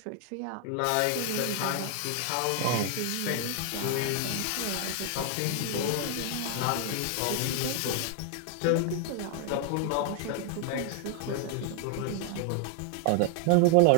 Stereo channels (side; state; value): both; different; correlation 0.00